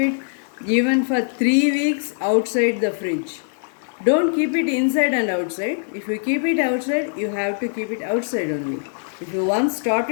even for 3 weeks outside the fridge. Don't keep it inside and outside. If you keep it outside, you have to keep it outside only. If you once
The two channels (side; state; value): right; silent; digital silence